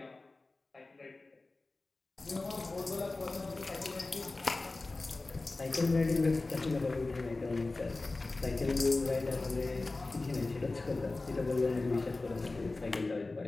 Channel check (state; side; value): quieter; right; 3.3 dB